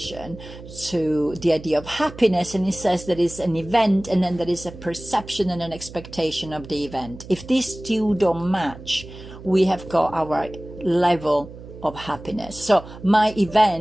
to the idea of happiness. And he says there is an event, and then there is a perception and an expectation of the event. If these two don't match, we have got our level of happiness. So my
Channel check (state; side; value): noise; right; hum, 16 dB below the sound